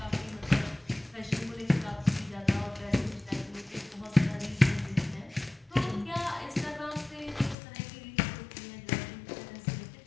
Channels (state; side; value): drops out; right; at 7.6 s